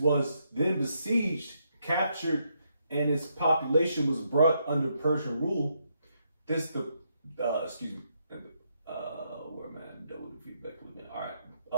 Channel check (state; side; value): inverted; both; correlation -0.77